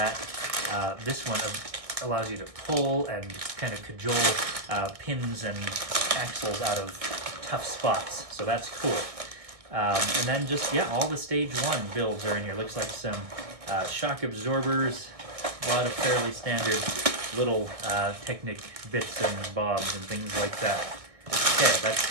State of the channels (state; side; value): late; left; 1.6 ms